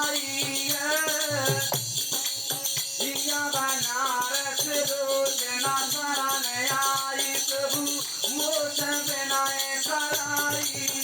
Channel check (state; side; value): identical; both; correlation 1.00